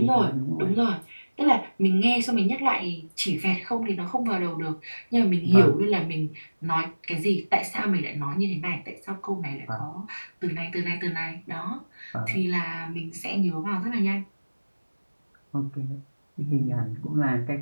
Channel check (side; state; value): both; inverted; correlation -1.00